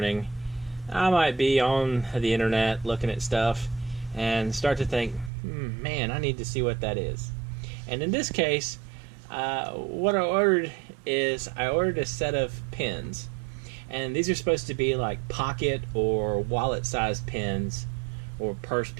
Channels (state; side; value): drops out; left; at 5.3 s